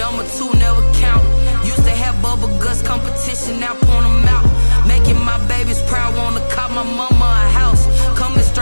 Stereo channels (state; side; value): inverted; both; correlation -1.00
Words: two never count. Used to have bubble guts competition, now point them out. Making my babies proud, wanna cop my mama a house. Coming